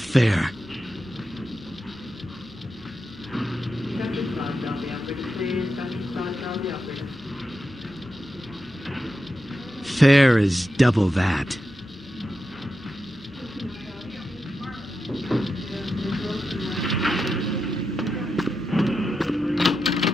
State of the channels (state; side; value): normal; both; correlation 0.88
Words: Dr. Scott, tell the operator, please. Dr. Scott, tell the operator. Fair is double that.